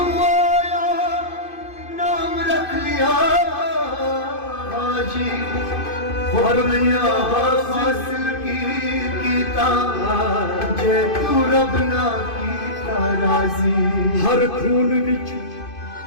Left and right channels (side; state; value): right; late; 2.5 ms